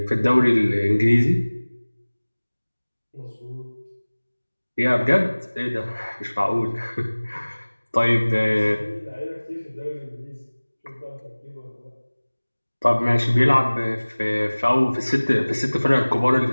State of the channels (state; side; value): inverted; both; correlation -1.00